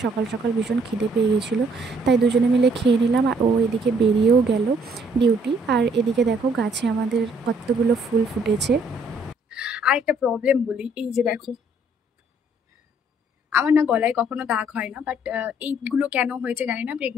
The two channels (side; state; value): both; normal; correlation 0.64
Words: সকাল সকাল ভীষণ খিদে পেয়ে গেছিলো, তাই দুজনে মিলে খেয়ে নিলাম। আর ও এদিকে বেরিয়েও গেল ডিউটি। আর এদিকে দেখো গাছে আমাদের কতগুলো ফুল ফুটেছে। আর একটা প্রবলেম বলি, এই যে দেখো আমার না গলায় কখনো দাগ হয় না, বাট এইগুলো কেন হয়েছে জানি না।